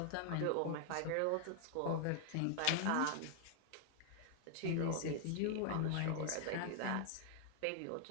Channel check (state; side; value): different; both; correlation 0.00